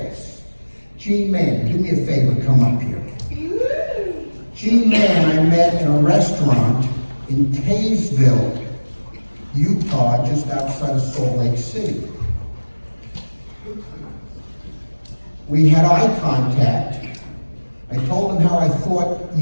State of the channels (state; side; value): inverted; both; correlation -1.00